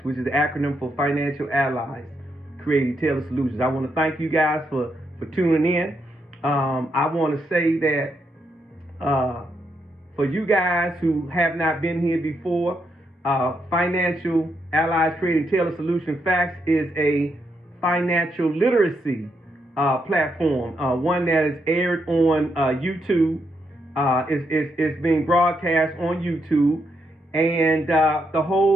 which is the acronym for Financial Allies, Creating Tailored Solutions. I want to thank you guys for tuning in. I want to say that for you guys who have not been here before, Financial Allies Creating Tailored Solution Facts is a financial literacy platform, one that is aired on YouTube. It's being broadcast on YouTube, and the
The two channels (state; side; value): normal; both; correlation 0.79